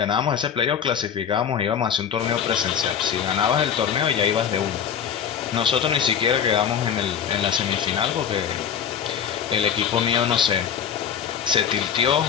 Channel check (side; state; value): right; quieter; 8.2 dB